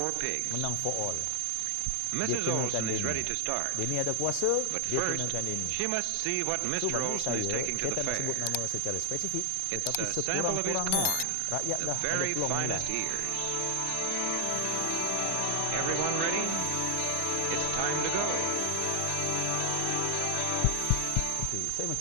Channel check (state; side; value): different; both; correlation 0.00